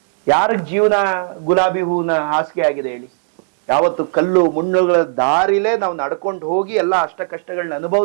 ಯಾರಿಗ್ ಜೀವನ ಗುಲಾಬಿ ಹೂವಿನ ಹಾಸಿಗೆ ಆಗಿದೆ ಹೇಳಿ? ಯಾವತ್ತು ಕಲ್ಲು ಮುಳ್ಳುಗಳ ದಾರಿಲೇ ನಾವು ನಡ್ಕೊಂಡು ಹೋಗಿ ಎಲ್ಲ ಅಷ್ಟ ಕಷ್ಟಗಳನ್ನ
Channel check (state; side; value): silent; left; digital silence